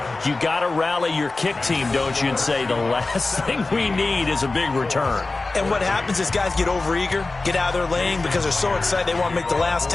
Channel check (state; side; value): quieter; right; 3.4 dB